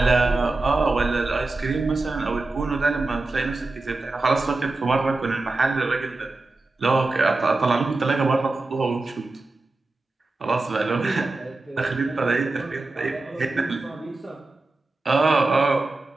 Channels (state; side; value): quieter; left; 3.3 dB